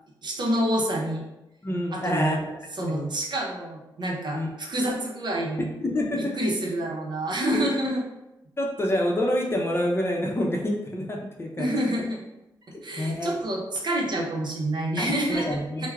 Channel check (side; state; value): both; normal; correlation 0.71